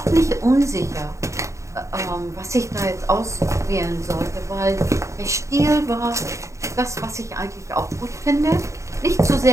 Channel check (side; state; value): left; late; 0.15 ms